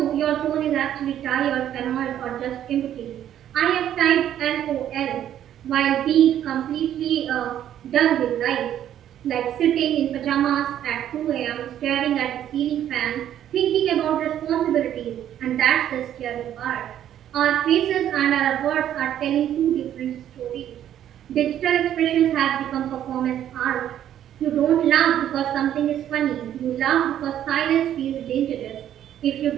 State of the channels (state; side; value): quieter; left; 10.8 dB